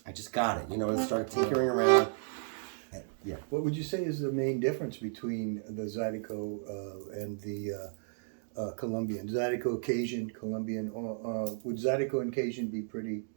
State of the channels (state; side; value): silent; left; digital silence